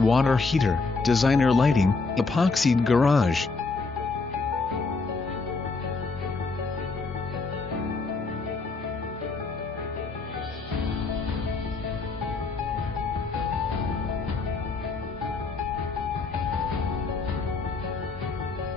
heater, designer lighting, epoxied garage,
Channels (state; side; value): quieter; right; 4.1 dB